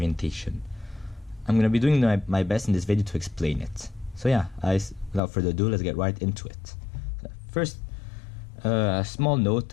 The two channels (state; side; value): drops out; right; at 5.2 s